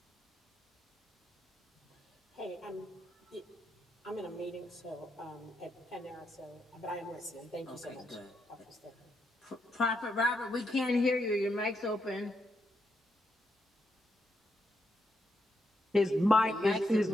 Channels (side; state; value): both; normal; correlation 0.80